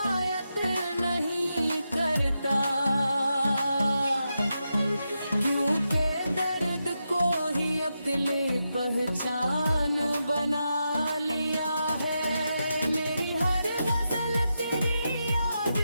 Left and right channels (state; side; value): inverted; both; correlation -0.87